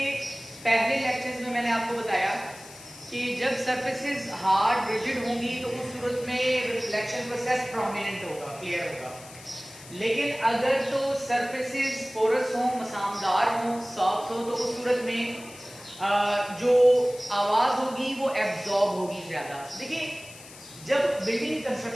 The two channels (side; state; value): left; noise; hiss, 18 dB below the sound